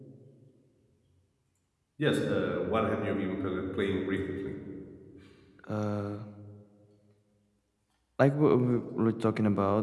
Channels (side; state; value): both; identical; correlation 1.00